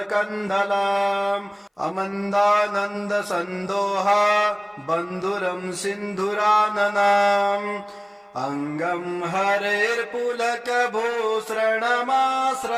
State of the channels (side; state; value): both; identical; correlation 1.00